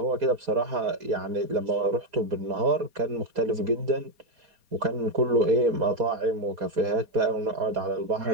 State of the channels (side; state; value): left; late; 4.2 ms